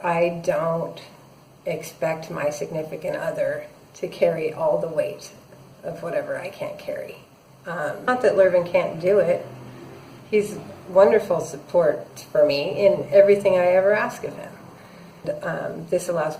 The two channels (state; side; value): identical; both; correlation 1.00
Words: I don't expect my significant other to carry all the weight of whatever I can't carry. Not that Lurvin can't do it. He's wonderful support for me in everything I ever ask of him. This allows